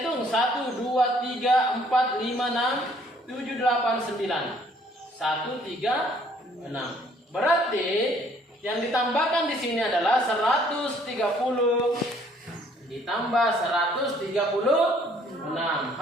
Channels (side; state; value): both; normal; correlation 0.61